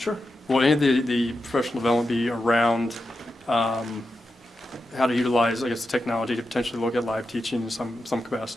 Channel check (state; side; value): normal; both; correlation 0.89